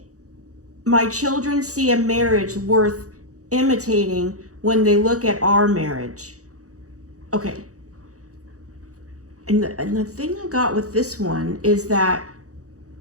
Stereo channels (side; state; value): left; late; 0.66 ms